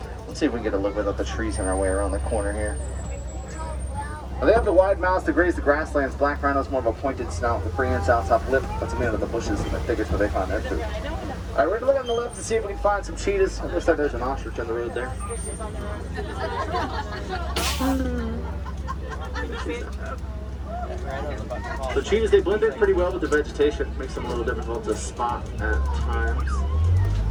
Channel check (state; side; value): identical; both; correlation 1.00